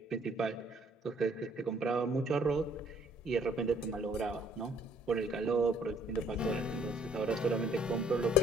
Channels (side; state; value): both; normal; correlation 0.61